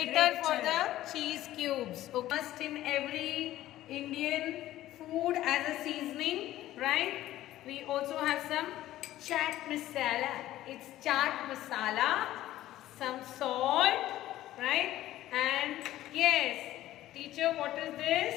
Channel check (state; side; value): quieter; right; 14.5 dB